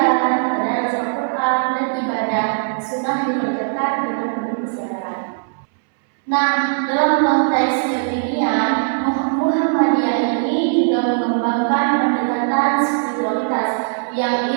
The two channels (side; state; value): left; silent; 64 dB below the other